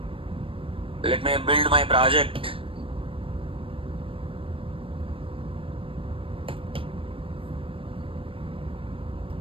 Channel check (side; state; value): left; late; 0.26 ms